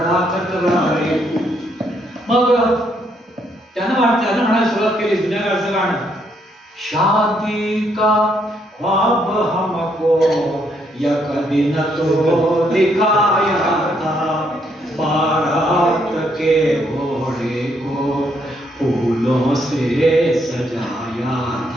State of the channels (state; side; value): normal; both; correlation 0.73